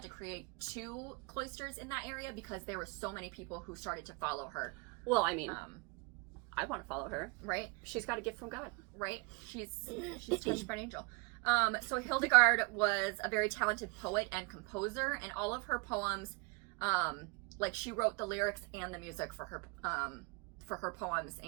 to create 2 cloisters in that area because there were so many people who started to follow her. Well, I mean, I want to follow her. Right? She's got a gift from God. Right? She's touched by an angel. So Hildegard was a very talented poet and composer, and all of her poems, she wrote the lyrics and the music for her poems,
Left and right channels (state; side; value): quieter; left; 28.4 dB